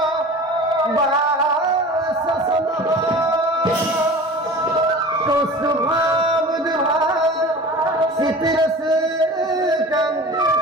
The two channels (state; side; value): normal; both; correlation 0.38